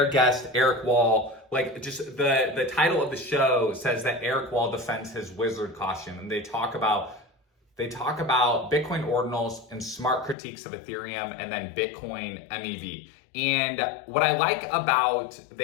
guest, Eric Wall, like just the title of the show says that Eric Wall defends his wizard costume, and they talk about Bitcoin ordinals and smart critiques of Ethereum, and then Bitcoin MEV. And what I like about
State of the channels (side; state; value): right; drops out; at 10.4 s